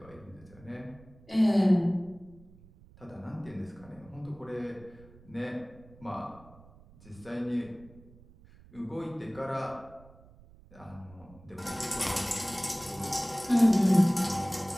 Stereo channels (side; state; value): right; noise; rumble, 23 dB below the sound